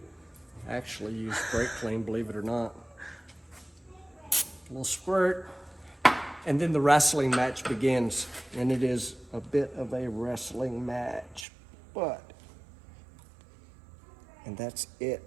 I actually use Brakleen, believe it or not. A little squirt, and then the wrestling match begins. And it is a bit of a wrestling match, and that's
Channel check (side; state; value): left; drops out; at 11.5 s